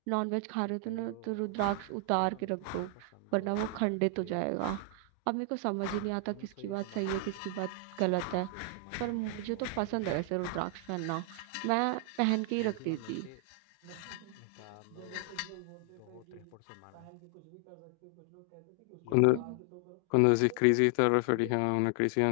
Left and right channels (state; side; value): different; both; correlation 0.00